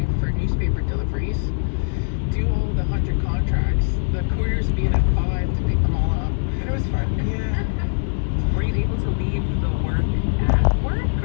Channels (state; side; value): silent; right; digital silence